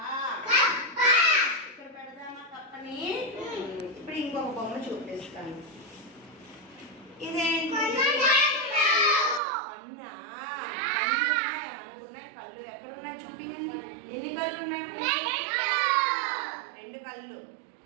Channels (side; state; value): left; drops out; at 9.4 s